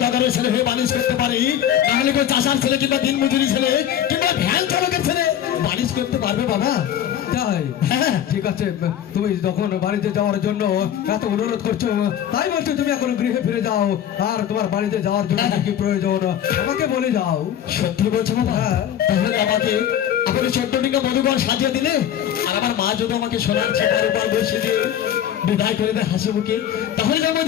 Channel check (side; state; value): right; quieter; 10.3 dB